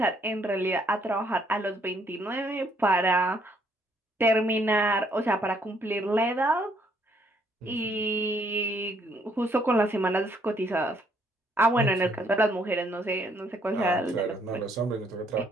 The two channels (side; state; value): both; normal; correlation 0.68